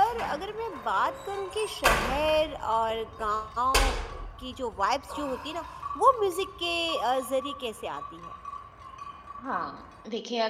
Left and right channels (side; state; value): both; identical; correlation 1.00